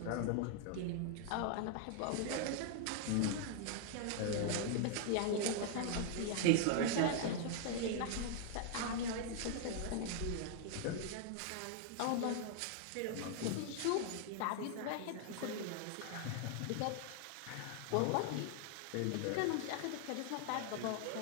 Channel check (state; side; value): different; both; correlation 0.00